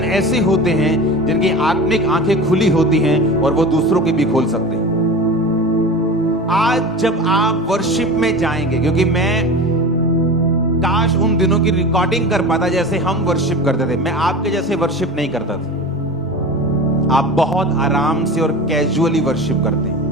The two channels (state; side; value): normal; both; correlation 0.32